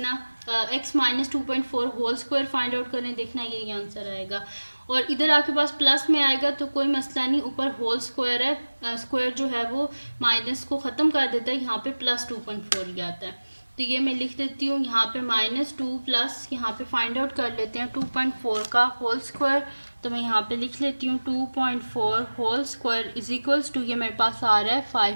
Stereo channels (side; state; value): both; inverted; correlation -1.00